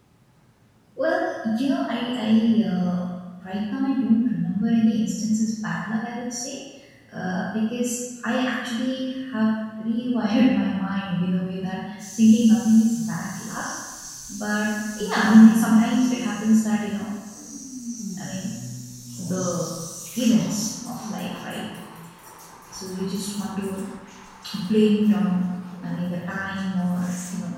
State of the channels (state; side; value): identical; both; correlation 1.00